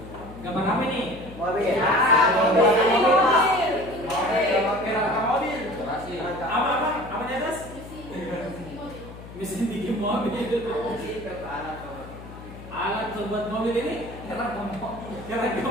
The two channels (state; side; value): noise; left; hum, 15 dB below the sound